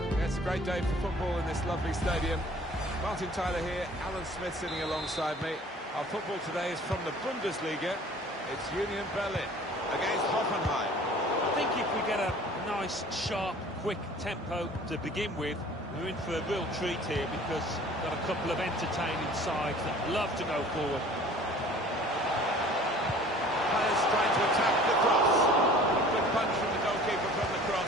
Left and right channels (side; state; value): both; normal; correlation 0.49